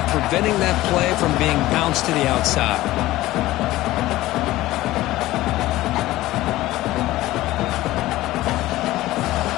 preventing that play from being bounced to the outside.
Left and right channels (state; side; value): quieter; right; 16.7 dB